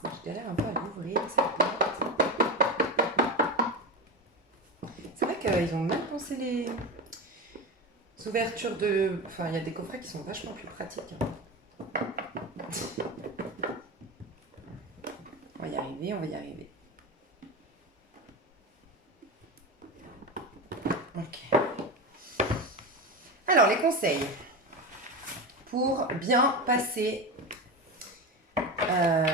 Je galère un peu à l'ouvrir, cette boîte. C'est vrai qu'ils ont mal pensé les ouvertures de... Enfin, il y a des coffrets qui sont vachement plus pratiques. On va y arriver, on va y arriver. Ok. Alors, les conseils pour bien passer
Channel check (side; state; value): both; normal; correlation 0.20